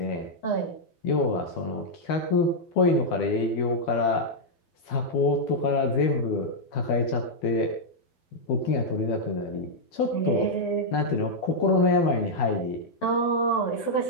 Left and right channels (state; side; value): late; right; 12 ms